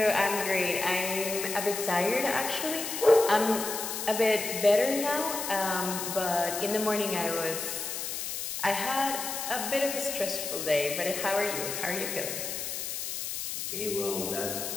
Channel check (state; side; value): noise; left; hiss, 4 dB below the sound